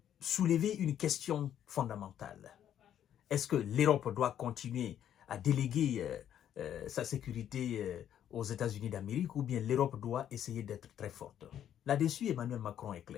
soulever une question fondamentale. Est-ce que l'Europe doit continuer à déléguer sa sécurité aux États-Unis d'Amérique ou bien l'Europe doit essayer d'être très forte? Là-dessus, Emmanuel Macron est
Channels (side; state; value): right; quieter; 10.2 dB